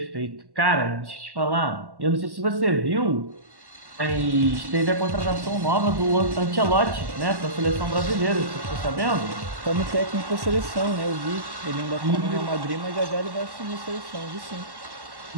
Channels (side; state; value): left; late; 1.1 ms